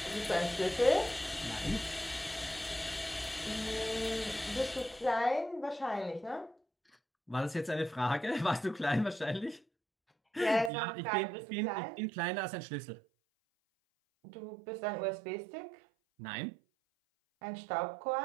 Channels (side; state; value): left; drops out; at 10.7 s